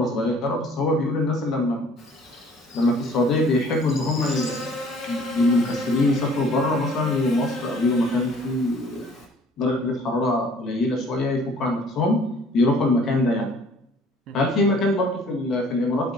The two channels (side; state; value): both; normal; correlation 0.54